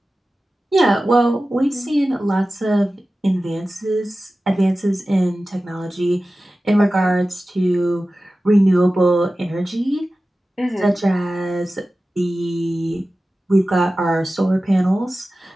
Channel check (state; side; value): normal; both; correlation 0.95